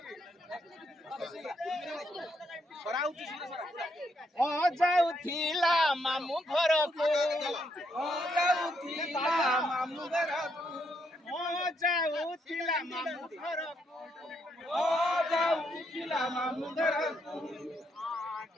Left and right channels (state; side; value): normal; both; correlation 0.76